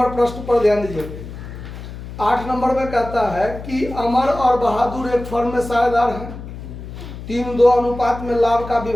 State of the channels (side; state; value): left; noise; hum, 11 dB below the sound